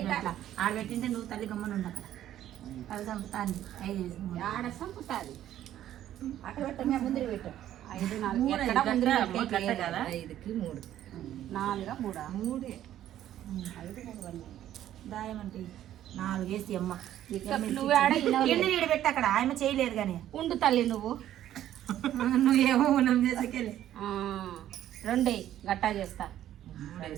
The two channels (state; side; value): quieter; left; 12.1 dB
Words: అట్లా ఆడ పెట్టింటే నువ్వు తల్లి గమ్మని ఉండు అక్కడ అది చంపుతాను 5 ఆడ సంపుతాది అక్కడ పెట్టు మేము ముందు పెట్టు 5 4 ఎక్కడ ముందు 5కి 3 4 3 దాయమంటే 4 వేసి అమ్మ నువ్వు ఆడ ఎన్ని నీడు పెట్టి అక్కడ ఆయమ్మ చేయలేదు కానీ ఉండు తల్లి నువ్వు నువ్వేమో మనం చేసేకెళ్ళి 2 గట్టా చేస్తా 3